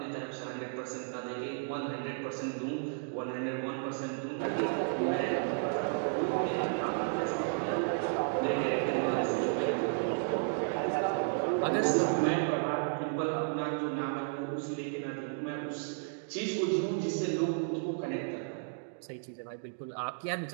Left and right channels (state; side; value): silent; left; digital silence